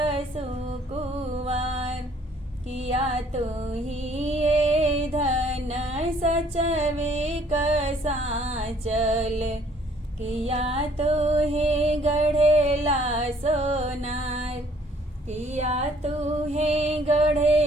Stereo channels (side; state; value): both; normal; correlation 0.61